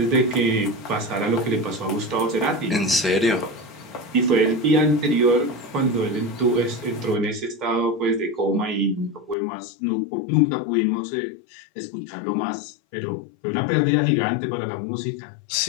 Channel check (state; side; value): drops out; right; at 9.3 s